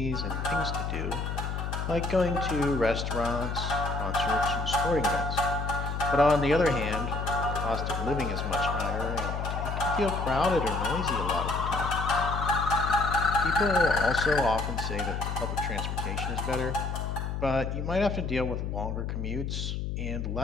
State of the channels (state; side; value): noise; left; hum, 3 dB below the sound